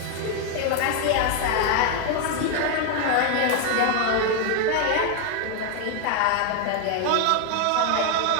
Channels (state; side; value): different; both; correlation 0.00